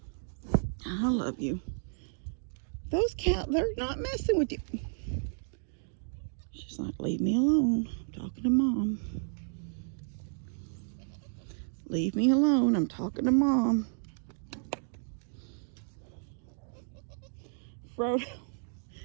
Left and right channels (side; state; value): left; silent; digital silence